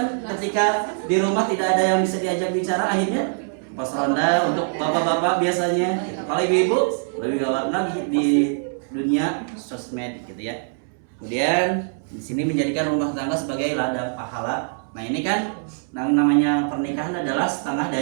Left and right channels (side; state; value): left; silent; 63 dB below the other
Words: ketika di rumah tidak ada yang bisa diajak bicara, akhirnya pos ronda untuk bapak-bapak biasanya. Kalau ibu-ibu lebih gawat lagi di dunia sosmed gitu ya. Kemudian di sini menjadikan rumah tangga sebagai ladang pahala. Nah, ini kan namanya pernikahan adalah setengah